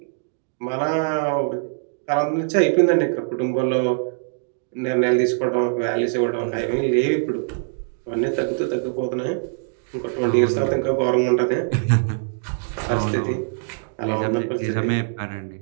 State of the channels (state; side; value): silent; left; digital silence